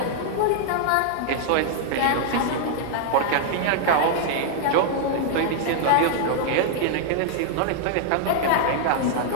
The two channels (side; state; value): both; different; correlation -0.01